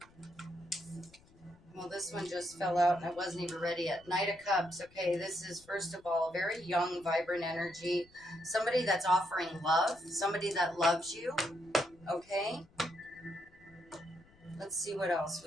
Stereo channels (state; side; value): noise; left; rumble, 27 dB below the sound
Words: Well, this one just fell out and I wasn't even ready yet. Knight of Cups. Okay, this is, first of all, a very young, vibrant energy. Somebody that's offering love. Somebody that loves you. Okay? Let's see what else